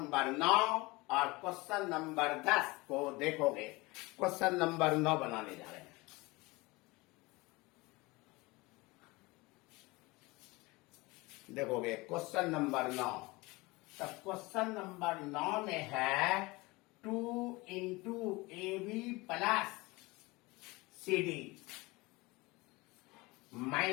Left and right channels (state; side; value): quieter; right; 23.1 dB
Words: 9 और क्वेश्चन नंबर 10 को देखोगे। क्वेश्चन नंबर 9 बनाने जा रहे हैं। देखोगे क्वेश्चन नंबर 9, तो क्वेश्चन नंबर 9 में है 2 into a b plus c d